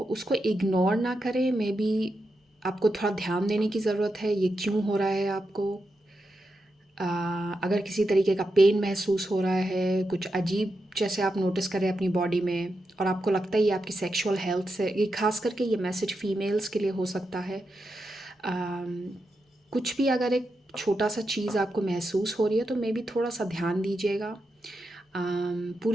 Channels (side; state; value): both; normal; correlation 0.86